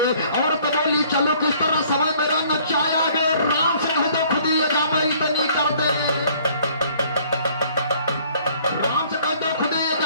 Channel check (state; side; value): inverted; both; correlation -0.58